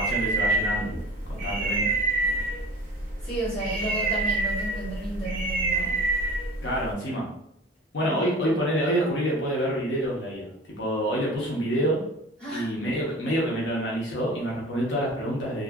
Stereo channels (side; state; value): both; normal; correlation 0.40